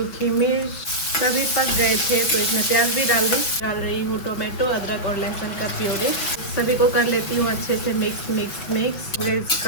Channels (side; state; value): right; late; 6.0 ms